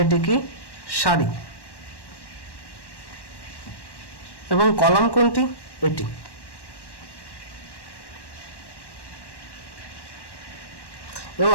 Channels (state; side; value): late; right; 1.1 ms